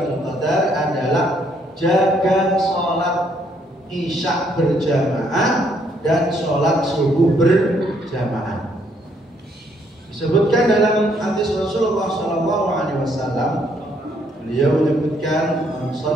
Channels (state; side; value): normal; both; correlation 0.70